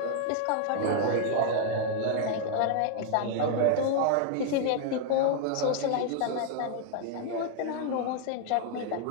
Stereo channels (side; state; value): both; different; correlation 0.00